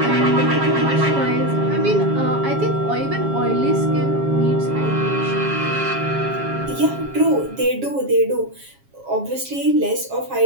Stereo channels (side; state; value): left; late; 7.3 ms